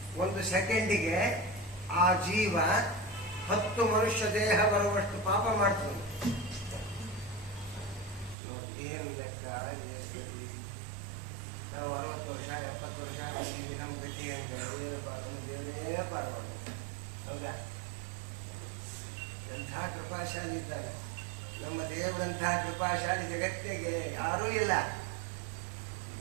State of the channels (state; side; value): drops out; left; at 8.3 s